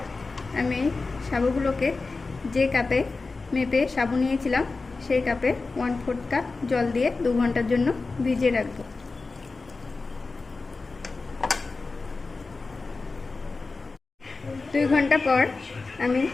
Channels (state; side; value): quieter; right; 3.8 dB